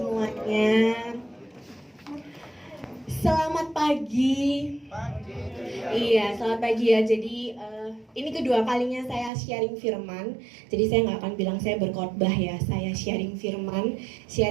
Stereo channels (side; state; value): left; drops out; at 9.3 s